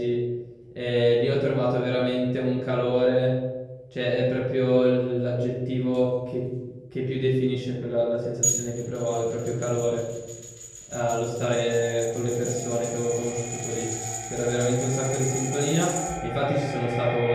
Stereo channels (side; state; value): both; identical; correlation 1.00